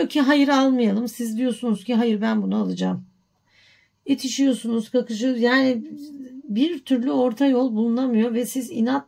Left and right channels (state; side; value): identical; both; correlation 1.00